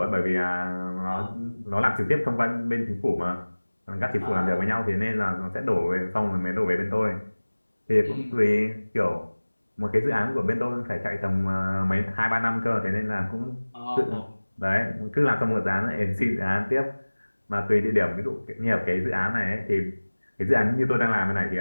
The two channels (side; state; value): both; inverted; correlation -1.00